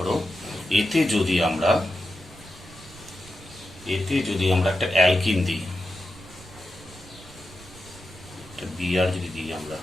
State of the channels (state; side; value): noise; right; rumble, 20 dB below the sound